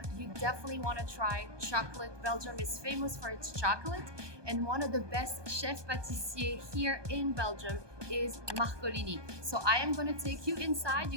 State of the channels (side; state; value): left; late; 1.2 ms